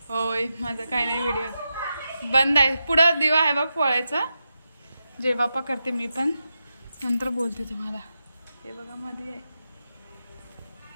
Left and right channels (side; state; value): both; inverted; correlation -0.89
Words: होय माझं काय नाही, व्हिडिओ बंद आहे. पुढं दिवा आहे बघ पोळायचा. जय बाप्पा करते मी पण, नंतर बोलते तुम्हाला. हे बघा मध्ये आहे